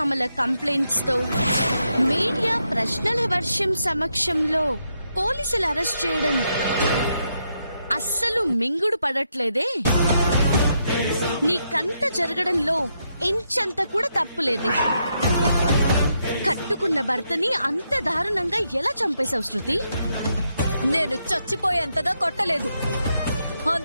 కంప్లైంట్స్ తో మీడియా ప్రశ్నల వర్షం సమక్షంలో పోలీసులు అరెస్ట్ చేయడం అస్సలు మింగుడు పడట్లేదే. నీకంత జరగడంలో ఇంచంత కూడా తప్పులేదే. కట్టుకున్న భర్తని అంత దారుణంగా ఎలా చంపేశావు శృతి? నేను చచ్చిపోయేంతగా కొట్టలేదు,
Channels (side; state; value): both; inverted; correlation -0.80